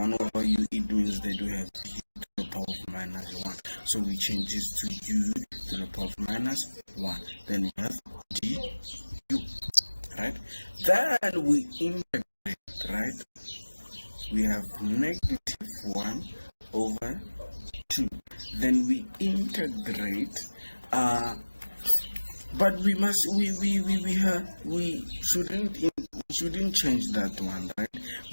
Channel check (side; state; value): both; inverted; correlation -1.00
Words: over u, it means that we have u to the power of minus 1. So we change this to u to the power of minus 1. Then we have du, right? Then we integrate, right? We have negative 1 over 2. Then we integrate, but we shouldn't change that one, right?